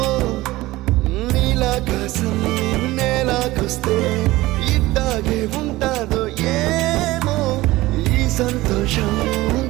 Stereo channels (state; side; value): quieter; left; 18.5 dB